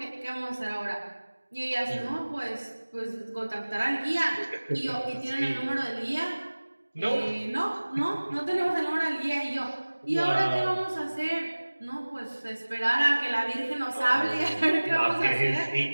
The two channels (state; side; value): inverted; both; correlation -1.00